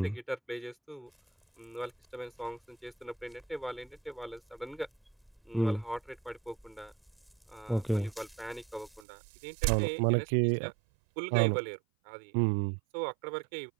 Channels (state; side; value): drops out; left; at 9.1 s